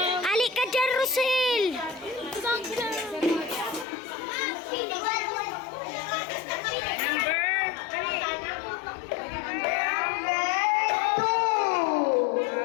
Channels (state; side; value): drops out; right; at 3.9 s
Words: Alik ka dyan, Rosel!